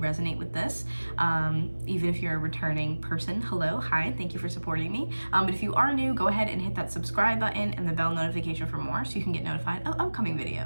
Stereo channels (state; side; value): inverted; both; correlation -1.00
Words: with this. Even if you're a returning person, hello, hi, thank you for supporting me. But if you are new, go ahead and hit that subscribe button and the bell notification for more so you can get notified of upcoming